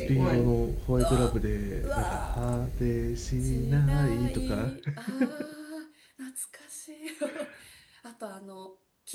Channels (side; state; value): both; identical; correlation 1.00